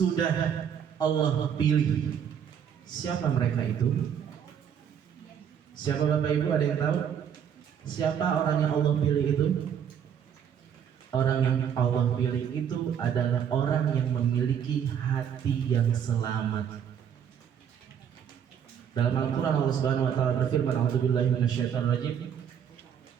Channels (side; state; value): left; quieter; 8.4 dB